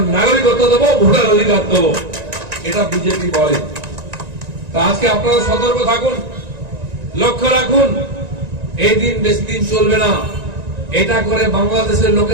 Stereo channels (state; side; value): late; left; 1.9 ms